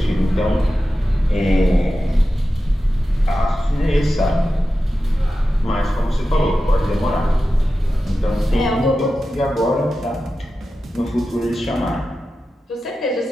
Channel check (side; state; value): both; normal; correlation 0.93